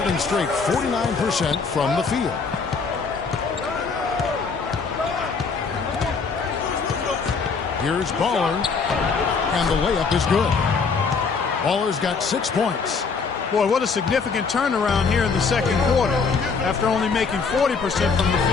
straight 49% from the field. Here's Baller, and the layup is good. Baller's got 6 points. Boy, what a significant turnaround here in the second quarter after only making 40% from the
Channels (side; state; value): right; quieter; 5.1 dB